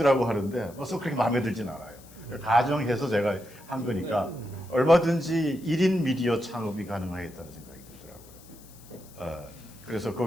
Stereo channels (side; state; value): left; noise; hiss, 23 dB below the sound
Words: 하는데 벌써 그렇게 마음에 들진 않아요. 가정해서 제가 한 거니까 얼마든지 1인 미디어 창업이 가능하겠다는 생각이 들더라고요. 그래서